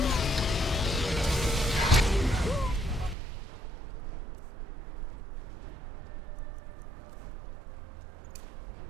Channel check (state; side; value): drops out; left; at 3.2 s